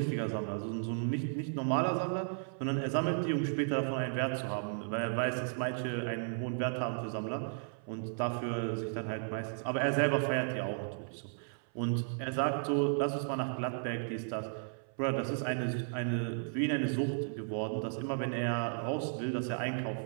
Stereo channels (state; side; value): silent; left; 55 dB below the other